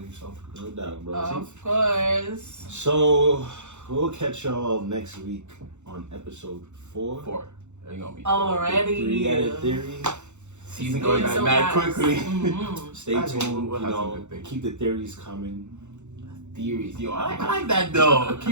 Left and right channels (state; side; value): late; left; 0.83 ms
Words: So No doubt, bro. Of course. So we'll catch y'all next week on episode 4. 4. They're gonna be Already. 3-Headed Theory. season going It's back so mad fast. quickly. Mhm. Stay I think tuned. we'll You have some know, good things. keep the theories coming. Theories, yo, I like that though.